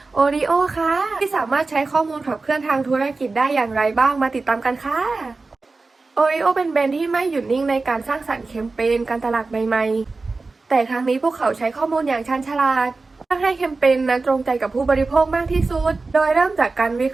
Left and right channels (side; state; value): left; quieter; 3.8 dB